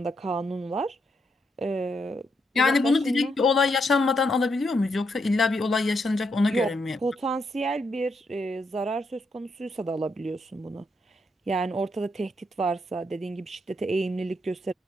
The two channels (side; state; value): both; normal; correlation 0.79